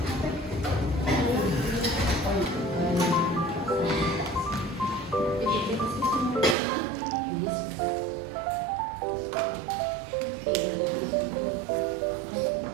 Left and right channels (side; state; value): left; drops out; at 6.6 s